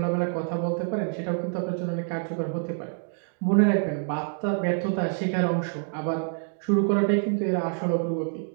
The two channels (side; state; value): left; silent; 60 dB below the other